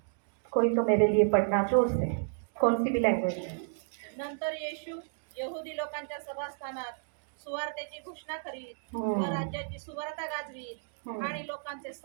कोई तो मेरे लिए पढ़ना जोर से, कौन सी भी लैंग्वेज है। नंतर येशू यहुदी लोकांच्या सभास्थानात सुवार्तेची घोषणा करीत व राज्याची सुवार्ता गाजवीत आणि लोकांचे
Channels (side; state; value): left; silent; digital silence